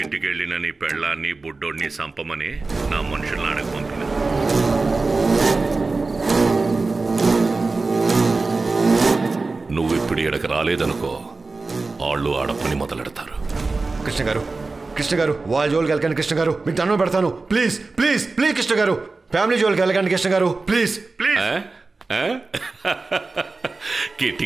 వెళ్ళిన నీ పెళ్ళాన్ని బుడ్డోడిని సంపమని నా మనుషులను అడగ పంపిన. నువ్వు ఇప్పుడు ఇక్కడికి రాలేదనుకో, వాళ్ళు ఆడపని మొదలెడతారు. కృష్ణ గారు, కృష్ణ గారు, వాళ్ళ జోలికి వెళ్ళకండి కృష్ణ గారు, మీకు దండం పెడతాను. ప్లీజ్ ప్లీజ్ ప్లీజ్ కృష్ణ గారు, ఫ్యామిలీ జోలికి వెళ్ళకండి కృష్ణ గారు, ప్లీజ్ ప్లీజ్.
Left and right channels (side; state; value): left; quieter; 3.7 dB